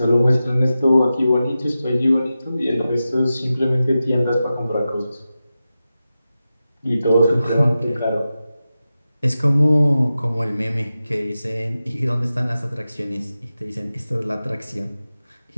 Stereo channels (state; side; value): inverted; both; correlation -0.93